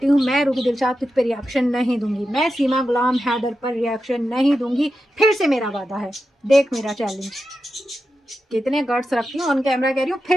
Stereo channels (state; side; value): normal; both; correlation 0.90